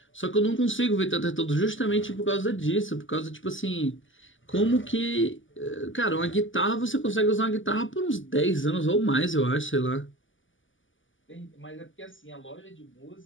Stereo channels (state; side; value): late; right; 0.57 ms